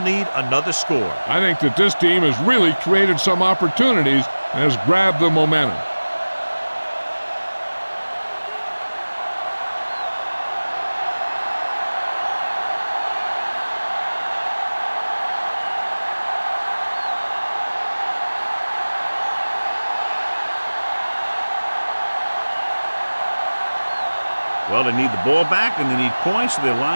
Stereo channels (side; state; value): both; inverted; correlation -1.00